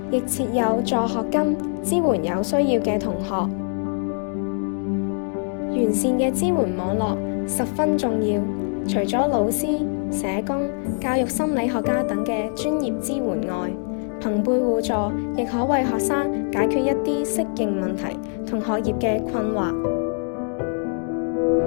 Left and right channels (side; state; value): right; silent; 57 dB below the other